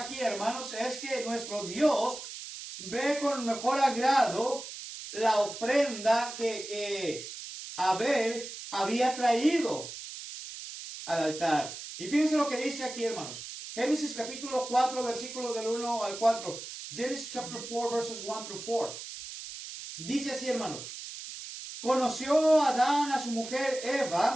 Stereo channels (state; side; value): noise; right; hiss, 10 dB below the sound